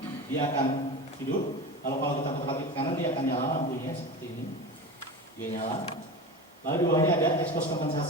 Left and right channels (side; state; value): both; normal; correlation 0.28